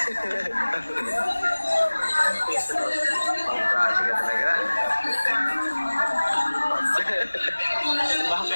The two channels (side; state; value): both; inverted; correlation -1.00